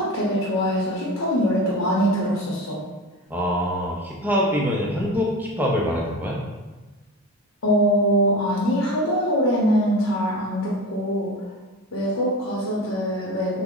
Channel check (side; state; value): both; normal; correlation 0.29